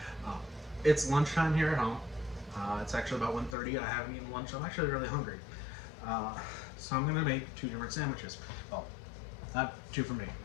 Uh, it's lunchtime here at home. It's actually about 1:30. I haven't eaten lunch. I'm actually really hungry. Uh, so I'm going to make two different sandwiches. Well, not two for me.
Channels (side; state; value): right; drops out; at 3.6 s